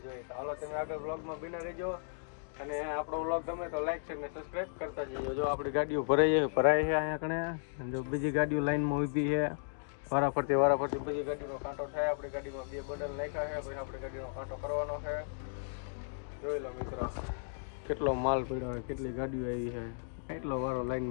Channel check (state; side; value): silent; right; digital silence